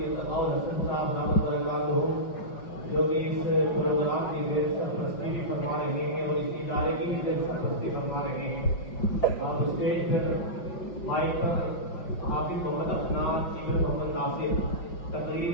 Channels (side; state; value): right; late; 5.5 ms